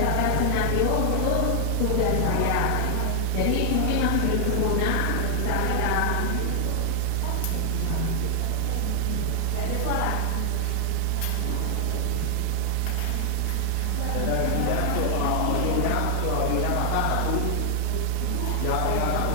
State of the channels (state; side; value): different; both; correlation 0.00